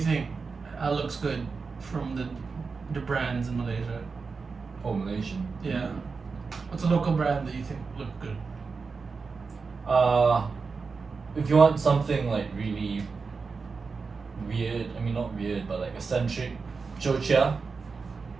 looks good from the brands in Malaysia? Oh, Malaysian. Yeah. What's a local brand that you think look good? If you want something like really weird, I mean not weird, but like eccentric, Jocha.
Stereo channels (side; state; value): left; quieter; 4.8 dB